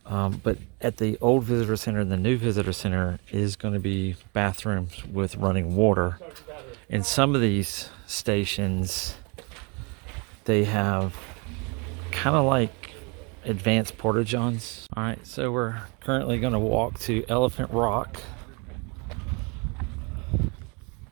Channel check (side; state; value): left; quieter; 31.7 dB